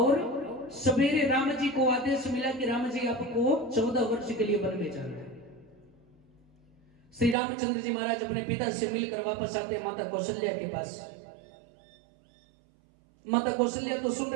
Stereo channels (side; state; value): left; drops out; at 7.4 s